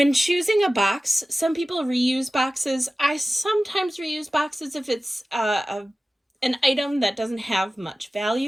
choosing a box, some people reuse boxes. I sometimes reuse boxes if it's an item that doesn't have much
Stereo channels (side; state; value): both; normal; correlation 0.96